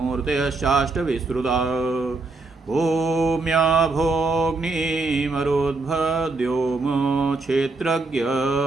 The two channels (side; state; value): left; quieter; 3.5 dB